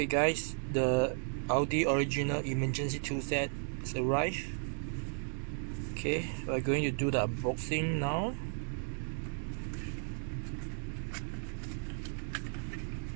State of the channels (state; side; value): silent; left; 55 dB below the other